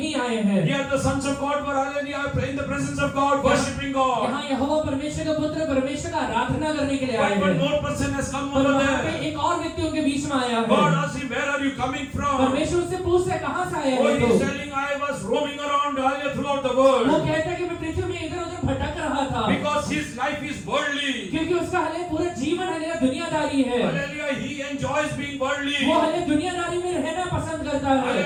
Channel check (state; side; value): identical; both; correlation 1.00